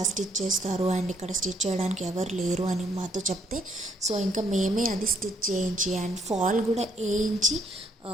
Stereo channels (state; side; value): normal; both; correlation 0.69